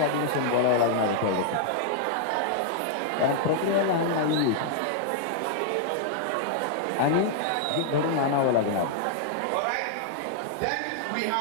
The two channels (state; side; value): different; both; correlation -0.01